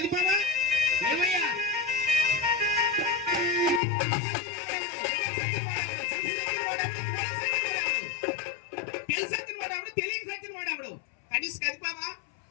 ఏమయ్యా? తెలిసి సచ్చిన వాడెవడు, తెలియక సచ్చిన వాడెవడు? కనీసం కదిపావా?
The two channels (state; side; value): drops out; right; at 3.8 s